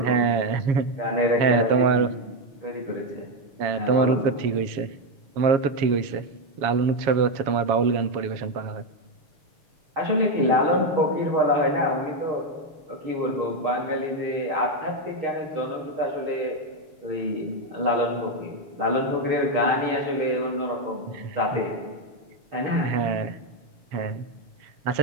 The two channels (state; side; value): late; left; 7.2 ms